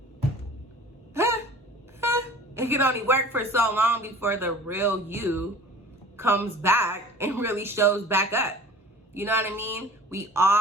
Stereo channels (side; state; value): both; normal; correlation 0.44